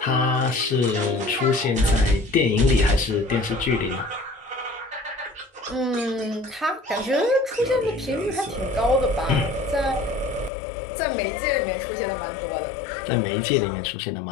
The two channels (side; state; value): right; drops out; at 10.5 s